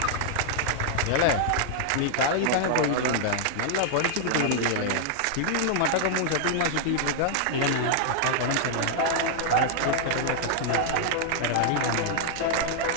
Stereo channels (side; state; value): both; different; correlation -0.01